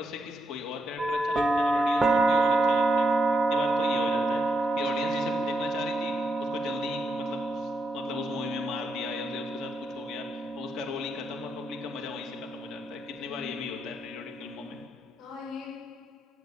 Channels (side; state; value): both; normal; correlation 0.82